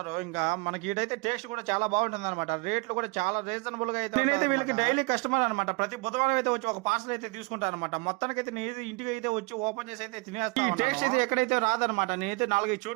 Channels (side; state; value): left; quieter; 28.4 dB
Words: ఇంకా మనకి ఇటైతే టేస్ట్ కూడా చాలా బాగుంటుంది అనమాట. రేట్లు కూడా చాలా రీజనబుల్ గా అయితే. నేనైతే వీళ్ళకి డైలీ కస్టమర్ అనమాట. ప్రతి బుధవారం అయితే వచ్చి ఒక పార్సల్ అయితే తీసుకుంటాను అనమాట. మొత్తానికి అయితే నేను ఇంటికి అయితే వచ్చి ఓపెన్ చేసి అయితే తినేస్తాను. ఈ టేస్ట్ అయితే ఎక్కడైతే రాదనమాట. నేనైతే 4-5